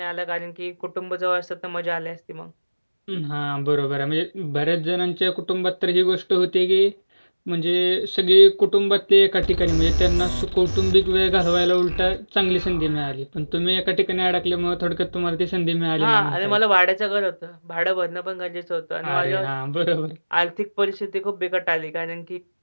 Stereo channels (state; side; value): inverted; both; correlation -1.00